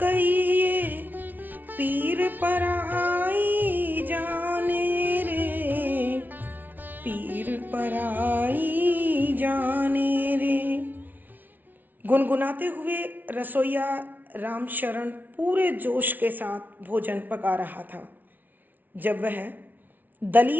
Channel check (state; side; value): late; left; 0.083 ms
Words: पीर पराई जाने रे, पीर पराई जाने रे। गुनगुनाते हुए रसोइया रामशरण पूरे जोश के साथ भोजन पका रहा था। जब वह